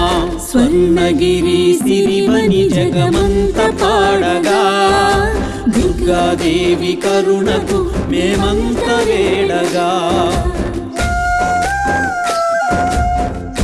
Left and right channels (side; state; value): both; identical; correlation 1.00